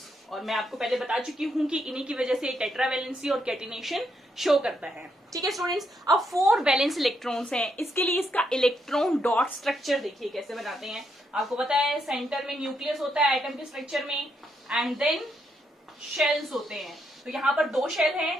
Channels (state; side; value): normal; both; correlation 0.78